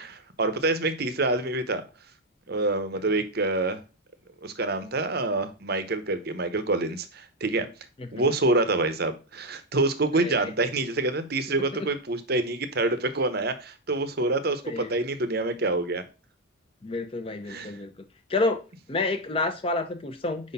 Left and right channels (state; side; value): normal; both; correlation 0.03